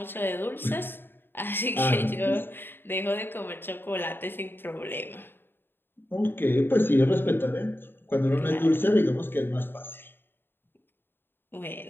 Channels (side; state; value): right; late; 0.10 ms